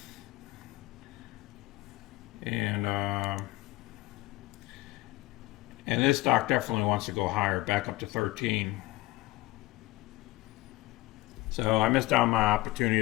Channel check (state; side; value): quieter; right; 19.2 dB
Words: And this stock definitely wants to go higher, back up to 13. So I missed out on my opportunity